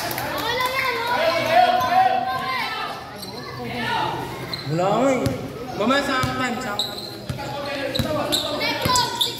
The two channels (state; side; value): identical; both; correlation 1.00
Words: Wala ko eh. Mamaya sa time.